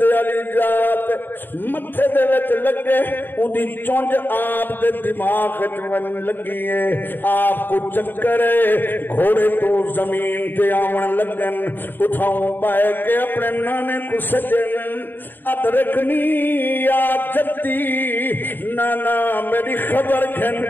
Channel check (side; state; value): right; late; 0.094 ms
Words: علی جات متھے دے وچ لگے اودی چونج آپ دے دماغ وچ ون لگی ہے آپ کو چکر ہے گھوڑے تو زمین تے آون لگن اٹھاؤں پائے کہ اپنے نانے کو سجن ادرکنی یا جدی نانا میری خبر خبر کھن